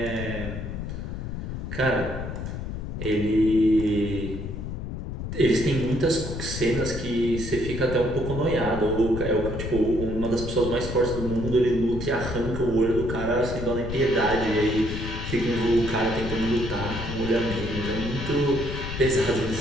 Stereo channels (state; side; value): noise; left; rumble, 6 dB below the sound